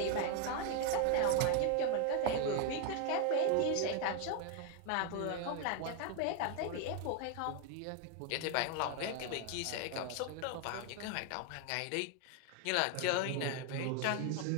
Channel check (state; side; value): different; both; correlation 0.01